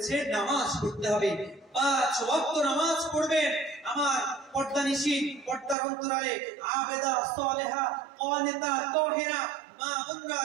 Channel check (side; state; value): left; drops out; at 5.8 s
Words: নামাজ পড়তে হবে, 5 ওয়াক্ত নামাজ পড়বেন। আমার পর্দানিশী, পর্দার অন্তরালে আবেদা, সালেহা, কানিতা, তাহেরা মা বোনরা